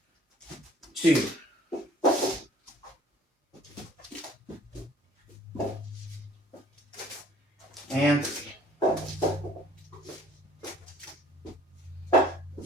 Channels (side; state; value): both; normal; correlation 0.53